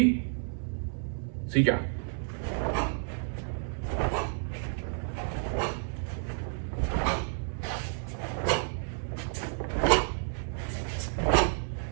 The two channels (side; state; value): left; silent; 57 dB below the other